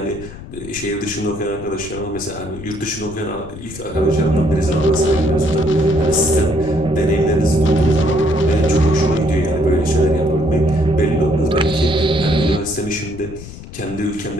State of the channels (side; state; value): left; noise; rumble, 14 dB below the sound